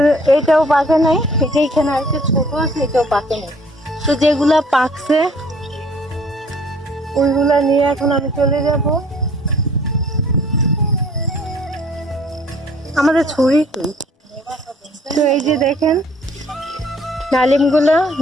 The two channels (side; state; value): both; normal; correlation 0.57